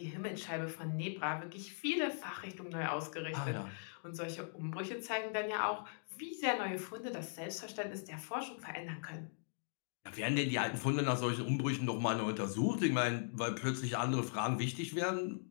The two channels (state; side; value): silent; right; digital silence